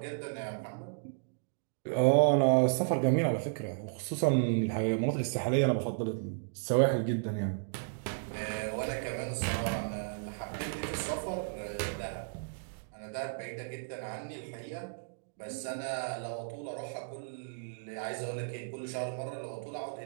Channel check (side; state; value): left; silent; digital silence